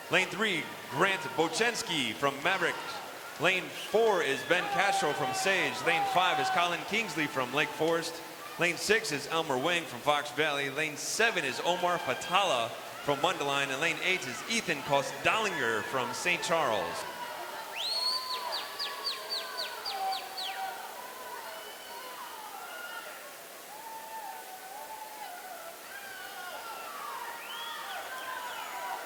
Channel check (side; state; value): both; identical; correlation 1.00